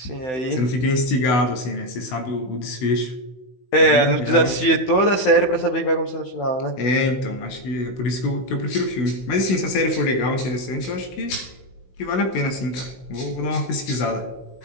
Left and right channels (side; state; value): right; late; 16 ms